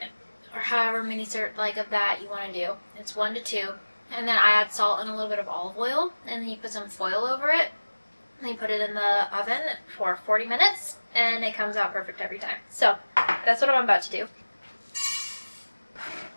or however many of that you want to do. It's 1 to 2. And then I add salt and a little bit of olive oil, and then you put some foil over it. And you put it in the oven for 40 minutes, and it comes out perfect every time. So, that's what I'm about to do.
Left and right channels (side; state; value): both; inverted; correlation -1.00